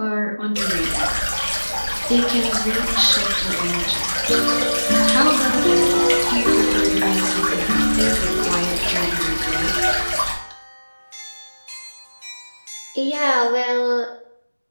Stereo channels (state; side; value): inverted; both; correlation -1.00